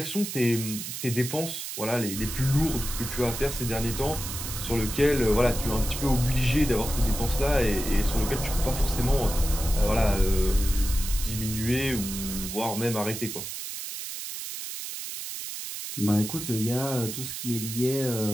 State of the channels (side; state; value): right; noise; hiss, 7 dB below the sound